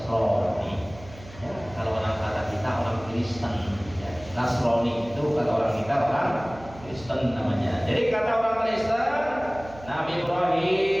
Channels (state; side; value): noise; right; hum, 18 dB below the sound